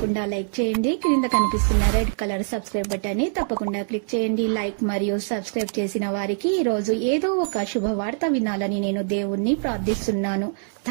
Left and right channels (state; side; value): silent; left; digital silence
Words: లైక్ చేయండి. క్రింద కనిపిస్తున్న రెడ్ కలర్ సబ్స్క్రైబ్ బటన్ ని తప్పకుండా క్లిక్ చేయండి. లైక్ మరియు సబ్స్క్రైబ్ చేసిన వారికి ఈ రోజు ఏదో ఒక శుభవార్త వినాలని నేను దేవుణ్ణి ప్రార్థిస్తున్నాను.